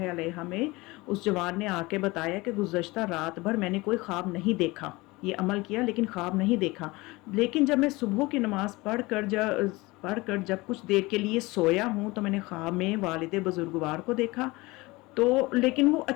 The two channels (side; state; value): right; quieter; 22.3 dB